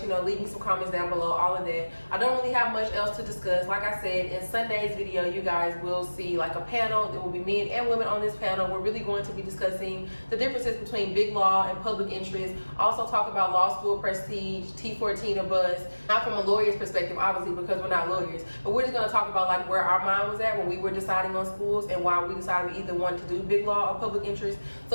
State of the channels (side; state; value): both; inverted; correlation -1.00